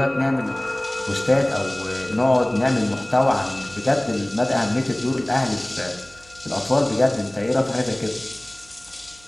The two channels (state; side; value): noise; right; hum, 26 dB below the sound